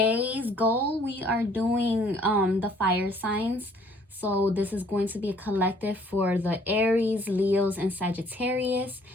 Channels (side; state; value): both; normal; correlation 0.60